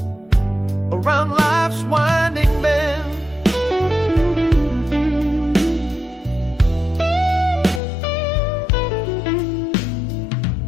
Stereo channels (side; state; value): right; drops out; at 7.8 s